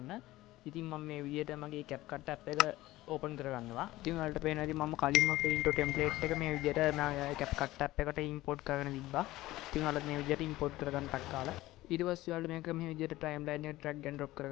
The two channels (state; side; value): quieter; right; 17.1 dB